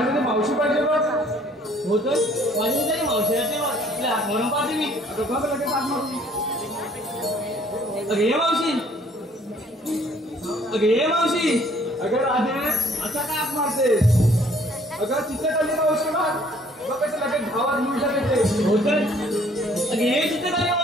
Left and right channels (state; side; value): normal; both; correlation 0.59